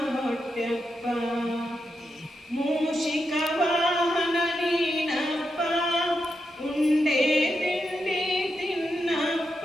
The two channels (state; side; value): normal; both; correlation 0.85